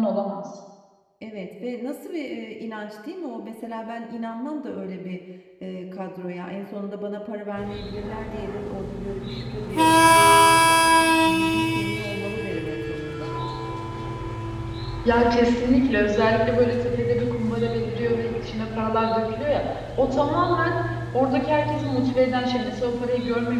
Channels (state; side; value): identical; both; correlation 1.00